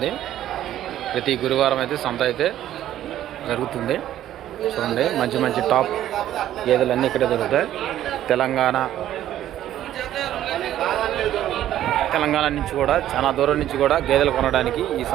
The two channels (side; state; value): left; quieter; 12.3 dB